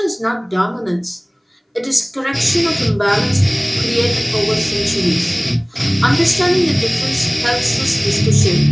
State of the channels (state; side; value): identical; both; correlation 1.00